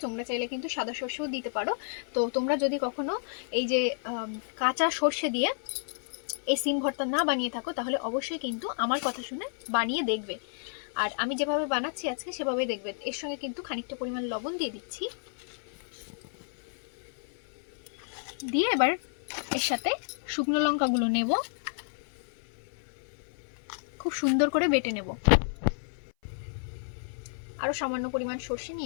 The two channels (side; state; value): right; silent; 56 dB below the other